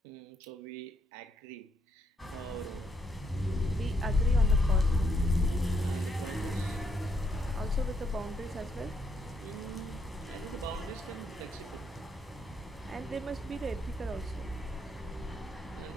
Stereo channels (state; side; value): normal; both; correlation 0.75